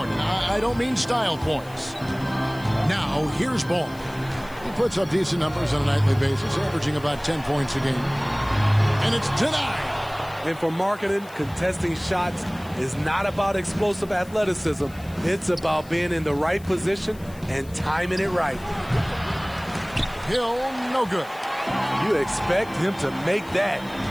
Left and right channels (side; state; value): left; noise; hiss, 23 dB below the sound